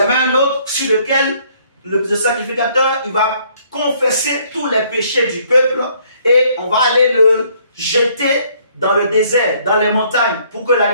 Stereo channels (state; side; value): inverted; both; correlation -0.64